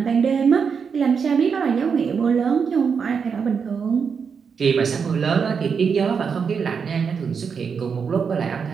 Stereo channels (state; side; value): quieter; left; 6.2 dB